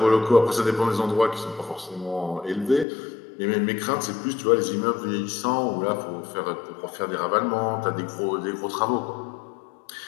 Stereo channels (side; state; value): right; drops out; at 2.9 s